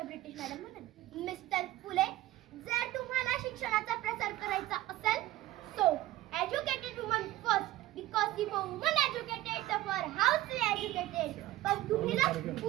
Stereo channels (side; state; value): left; quieter; 16.1 dB